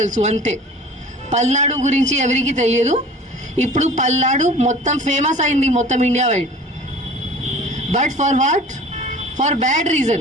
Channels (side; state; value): both; normal; correlation 0.43